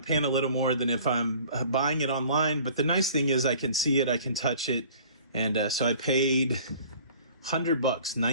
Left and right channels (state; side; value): inverted; both; correlation -0.49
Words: a little more than if I'm buying it online. But the nice thing is I can see it, I can touch it. And so I paid $100,